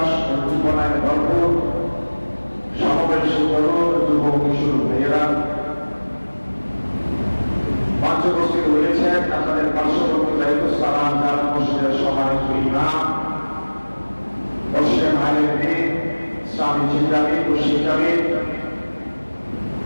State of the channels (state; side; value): inverted; both; correlation -1.00